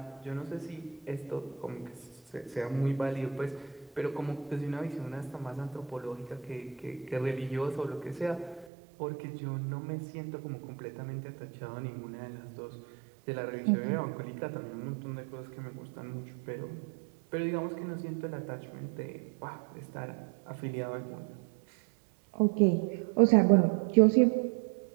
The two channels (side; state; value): left; drops out; at 8.7 s